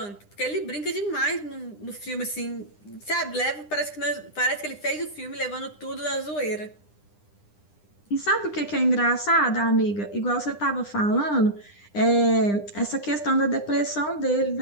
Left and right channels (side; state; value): right; late; 9.9 ms